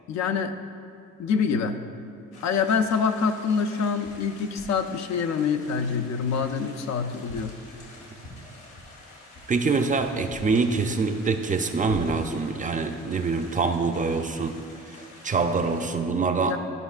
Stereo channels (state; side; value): normal; both; correlation 0.36